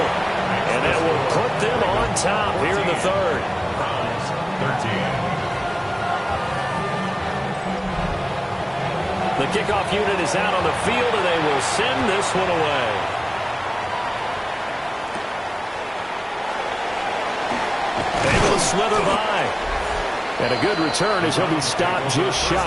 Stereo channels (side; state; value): both; identical; correlation 1.00